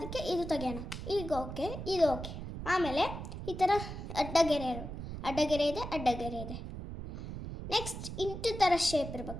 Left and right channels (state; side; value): noise; right; rumble, 8 dB below the sound